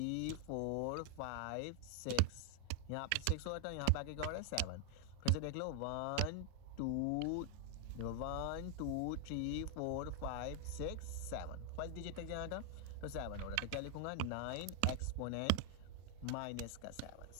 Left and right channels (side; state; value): both; different; correlation 0.00